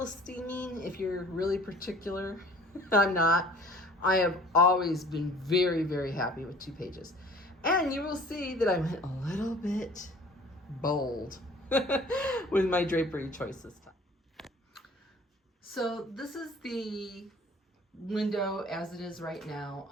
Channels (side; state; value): both; normal; correlation 0.49